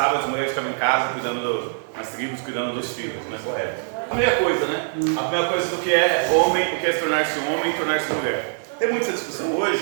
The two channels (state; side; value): silent; left; digital silence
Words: as mulheres ficavam em casa cuidando das tribos, cuidando dos filhos, não é correto. A primeira coisa, né, a primeira coisa do que é homem, o que é se tornar-se homem e tornar-se mulher. Tem muita discussão hoje,